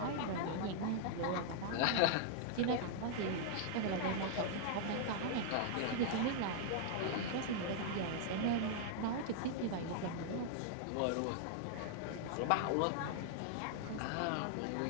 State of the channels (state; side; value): different; both; correlation -0.01